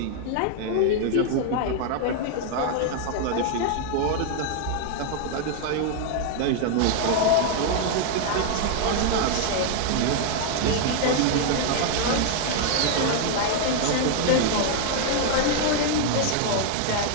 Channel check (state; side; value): different; both; correlation 0.00